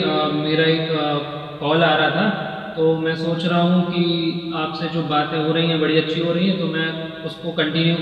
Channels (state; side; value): identical; both; correlation 1.00